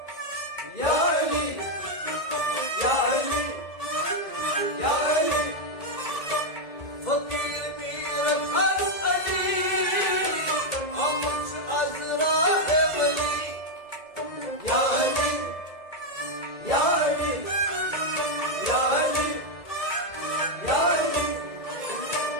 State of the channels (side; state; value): right; late; 2.0 ms